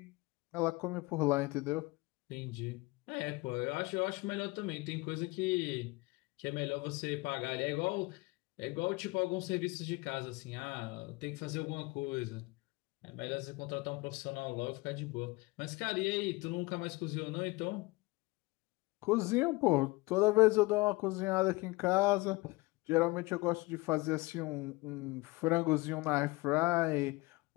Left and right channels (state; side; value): quieter; right; 23.3 dB